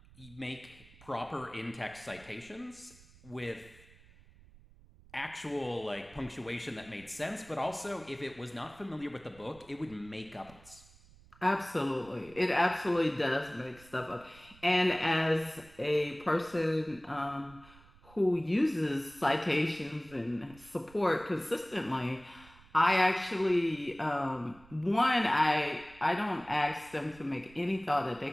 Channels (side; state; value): right; noise; rumble, 24 dB below the sound